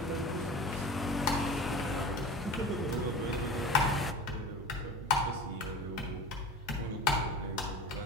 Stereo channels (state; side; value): normal; both; correlation 0.34